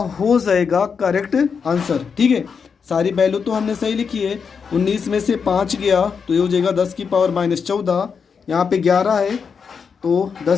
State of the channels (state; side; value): quieter; right; 6.1 dB